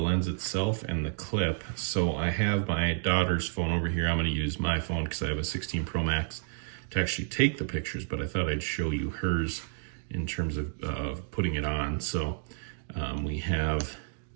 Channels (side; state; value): left; silent; digital silence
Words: itself and the clip. So I have my daughter's phone over here. I'm going to use my phone because I have a 16 Pro Max to actually take the pictures, but I thought I'd show you hers in terms of putting it on. So we have